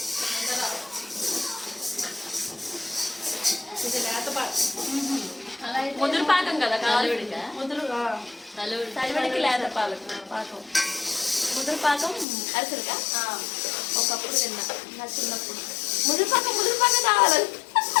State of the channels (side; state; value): right; drops out; at 12.2 s